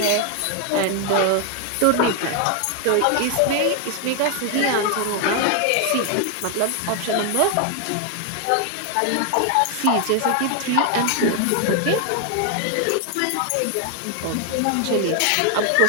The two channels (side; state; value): both; different; correlation 0.00